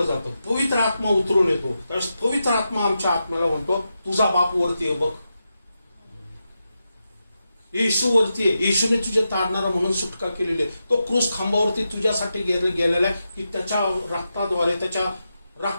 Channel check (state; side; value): inverted; both; correlation -0.88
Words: जातं, पवित्र आत्मा उतरून येतो, त्यावेळेस पवित्र आत्मा आमच्या आत्म्याला म्हणतो, तुझा बाप वरती आहे बघ, येशू वरती आहे, येशूने तुझे तारणारा म्हणून सुटका केलेली आहे. तो क्रूस खांबावरती तुझ्यासाठी गेलेला आहे की त्याच्या रक्ताद्वारे